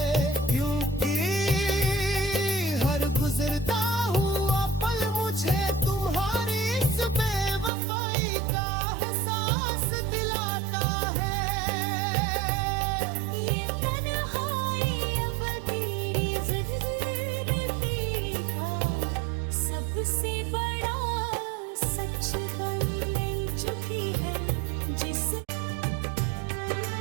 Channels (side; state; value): left; drops out; at 7.7 s